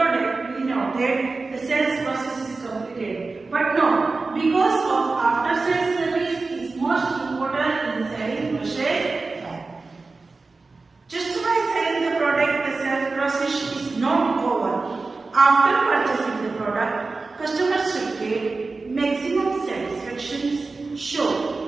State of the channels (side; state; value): left; quieter; 3.8 dB